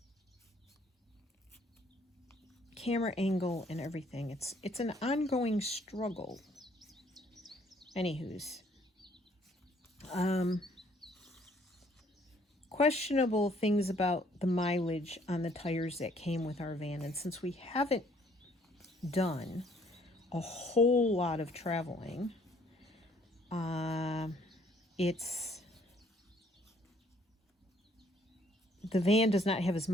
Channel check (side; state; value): both; normal; correlation 0.62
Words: camera angle and everything. It's an ongoing struggle. Anywho's, questionable things about the mileage on the tires that came with our van. And since we haven't done a whole lot of traveling, the van does not have as